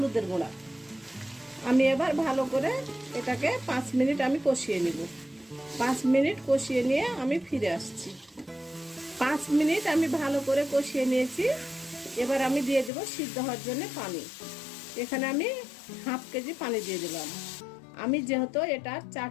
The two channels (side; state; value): right; drops out; at 12.9 s